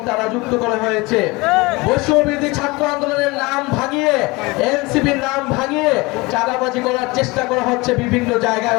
তারা যুক্ত করা হয়েছে বৈষম্য বিরোধী ছাত্র আন্দোলনের নাম ভাঙিয়ে, এনসিপির নাম ভাঙিয়ে চাঁদাবাজি করার চেষ্টা করা হচ্ছে বিভিন্ন জায়গায়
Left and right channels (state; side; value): quieter; right; 23.5 dB